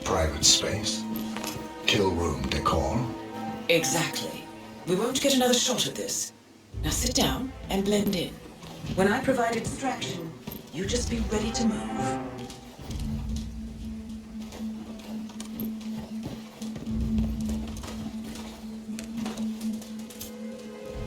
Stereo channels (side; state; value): both; identical; correlation 1.00